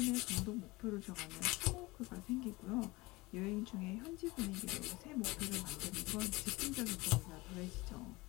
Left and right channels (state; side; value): quieter; right; 22.2 dB